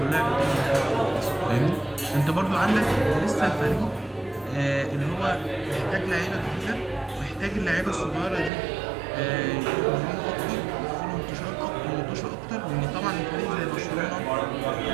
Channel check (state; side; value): drops out; left; at 8.5 s